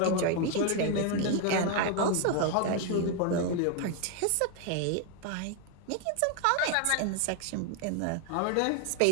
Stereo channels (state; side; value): different; both; correlation 0.01